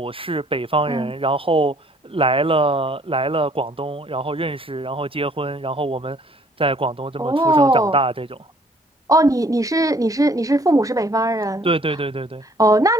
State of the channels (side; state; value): both; normal; correlation 0.60